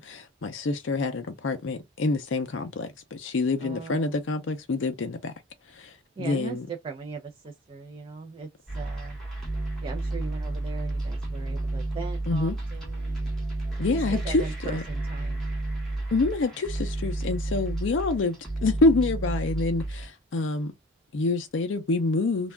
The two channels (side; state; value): both; normal; correlation 0.46